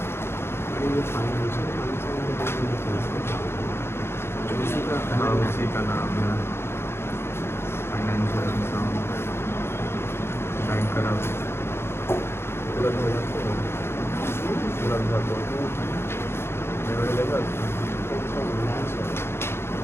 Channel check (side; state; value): right; late; 0.12 ms